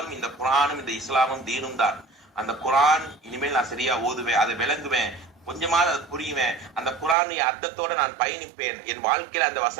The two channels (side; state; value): left; drops out; at 7.2 s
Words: இந்த குரானும் இந்த இஸ்லாமும் தீனும் தான். அந்த குரான் இனிமேல் நான் சரியா ஓதுவேன், அதை விளங்குவேன், கொஞ்சமாவது அது புரியுவேன். அந்த குரானுடைய அர்த்தத்தோட நான் பயணிப்பேன். என் வாழ்க்கையில அந்த